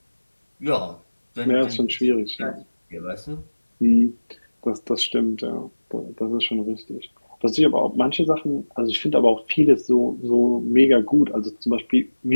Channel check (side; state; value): both; inverted; correlation -1.00